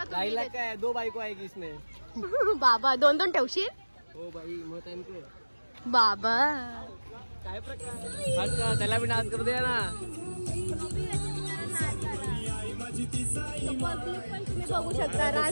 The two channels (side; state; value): both; inverted; correlation -1.00